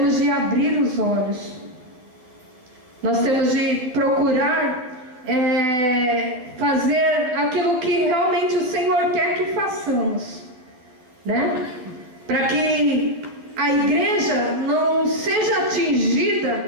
de abrir os olhos. Nós temos de procurar fazer aquilo que realmente o Senhor quer que façamos. né? Para que a igreja não seja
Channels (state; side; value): late; left; 12 ms